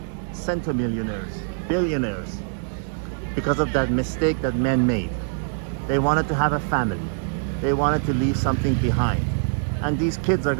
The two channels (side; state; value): left; silent; digital silence